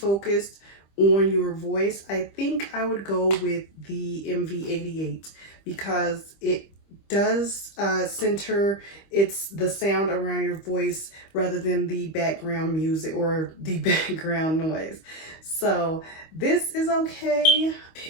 on your voice, I think I would go with the MV88, because it does center the sound around your voice rather than the background music or the background noise. So this is okay.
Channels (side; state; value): right; late; 25 ms